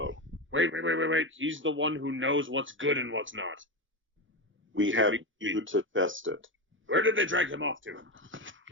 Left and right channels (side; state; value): both; normal; correlation 0.16